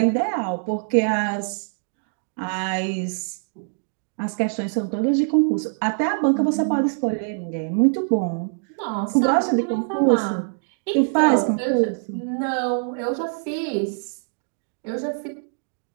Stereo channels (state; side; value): silent; left; digital silence